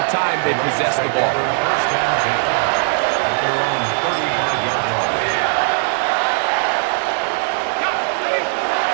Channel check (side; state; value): left; silent; 58 dB below the other